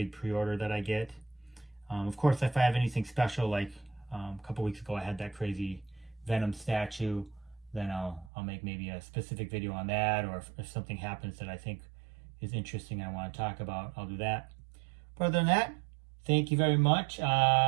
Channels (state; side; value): drops out; left; at 8.3 s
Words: pre-order that I get. Of course, if I have anything special, like a couple weeks ago I had that crazy Venom statue, then I'll make maybe a specific video on that, or if something happens that I think is interesting I want to talk about, I'll do that. But other than that, thank you very much.